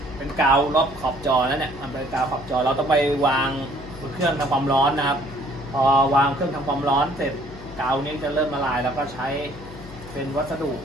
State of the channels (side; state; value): left; noise; hum, 16 dB below the sound